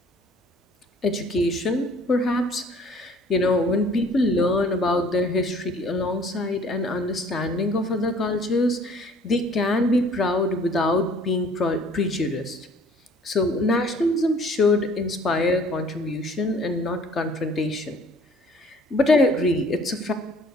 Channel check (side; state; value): both; normal; correlation 0.55